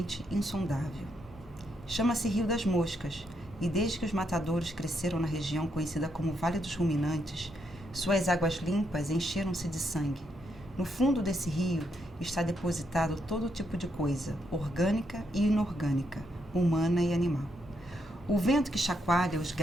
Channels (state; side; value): normal; both; correlation 0.78